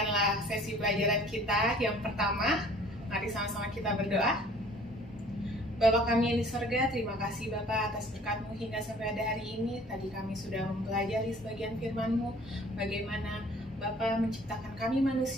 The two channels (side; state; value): both; normal; correlation 0.52